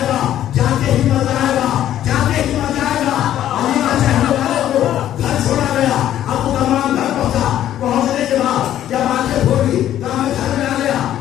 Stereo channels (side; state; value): right; quieter; 11.8 dB